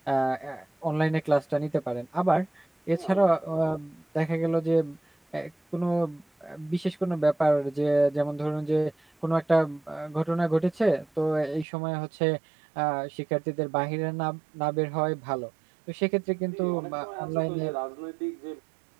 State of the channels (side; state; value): left; drops out; at 11.7 s